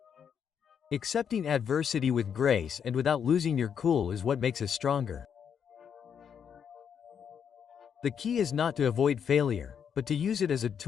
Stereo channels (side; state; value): right; quieter; 7.7 dB